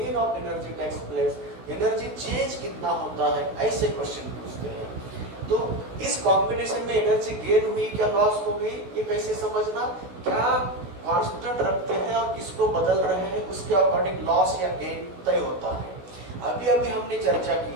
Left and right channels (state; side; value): late; left; 16 ms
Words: of energy takes place, energy change कितना होता है, ऐसे question पूछते हैं। तो इस combination में energy gain हुई क्या लॉस हो गई, ये कैसे समझना, क्या कांस्टेंट रखते हैं और किसको बदल रहे हैं उसके अकॉर्डिंग लॉस या गेन तय होता है। अभी अभी हमने चर्चा